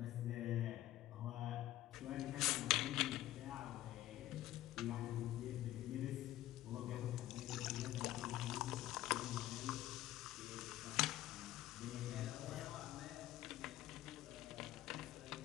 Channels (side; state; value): right; quieter; 14.6 dB